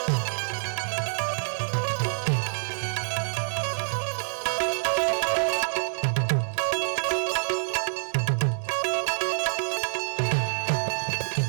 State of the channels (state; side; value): silent; left; 60 dB below the other